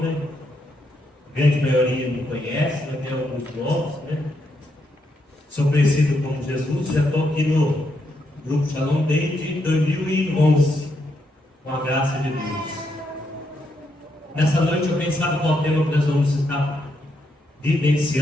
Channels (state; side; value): normal; both; correlation 0.79